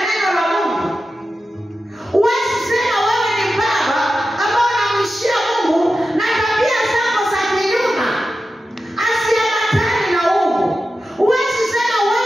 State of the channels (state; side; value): normal; both; correlation 0.92